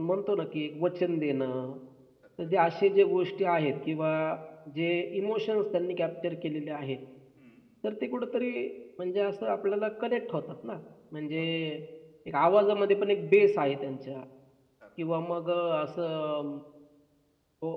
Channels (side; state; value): both; identical; correlation 1.00